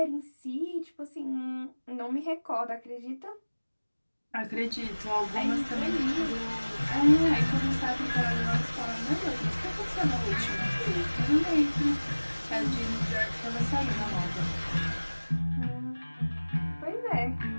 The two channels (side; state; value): both; inverted; correlation -1.00